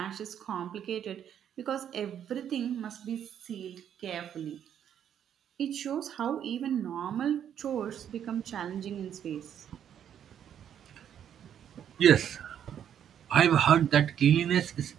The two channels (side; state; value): left; quieter; 9.4 dB